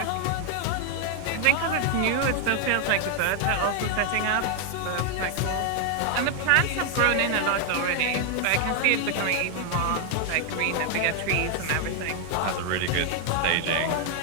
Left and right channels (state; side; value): different; both; correlation 0.00